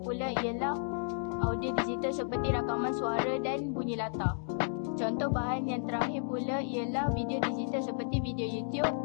pula ialah audio digital seperti rakaman suara dan bunyi latar. Contoh bahan yang terakhir pula ialah video digital seperti video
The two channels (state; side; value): silent; right; digital silence